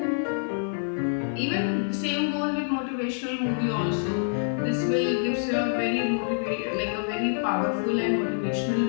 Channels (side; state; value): right; silent; digital silence